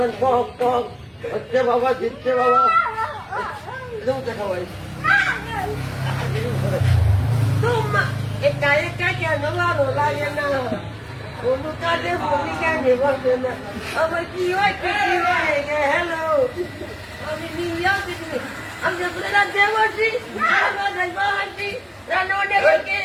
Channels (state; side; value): identical; both; correlation 1.00